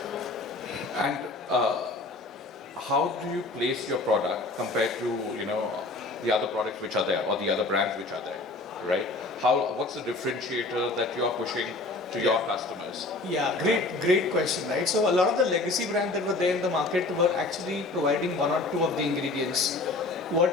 And how do you place your product compared to the other products which are there or the other brands which are there, right? What's the differentiator that you are pushing to your customers? Yeah, great question, right? So a lot of the legacy brands that were there in the market were actually providing one or two of the ingredients.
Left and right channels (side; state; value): right; quieter; 3.2 dB